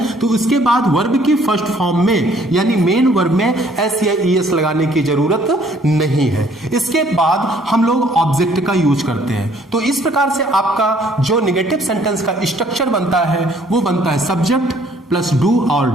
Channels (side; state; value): both; normal; correlation 0.61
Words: तो उसके बाद वर्ब की फर्स्ट फॉर्म में यानी मेन वर्ब में एस या ईएस लगाने की जरूरत नहीं है। इसके बाद हम लोग ऑब्जेक्ट का यूज करते हैं। तो इस प्रकार से आपका जो नेगेटिव सेंटेंस का स्ट्रक्चर बनता है वो बनता है सब्जेक्ट प्लस डू और